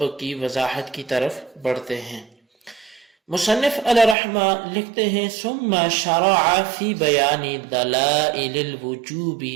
کی وضاحت کی طرف بڑھتے ہیں۔ مصنف علیہ رحمہ لکھتے ہیں ثم شرع فی بیان دلائل الوجوب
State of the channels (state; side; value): drops out; left; at 4.2 s